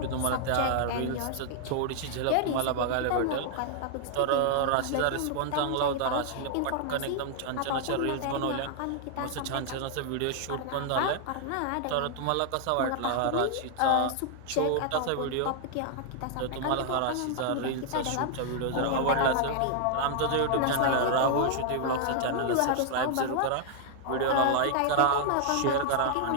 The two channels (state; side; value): different; both; correlation 0.00